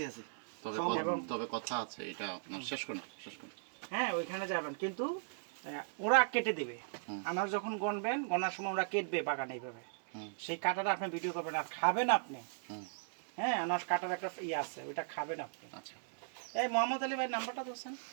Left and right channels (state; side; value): silent; left; digital silence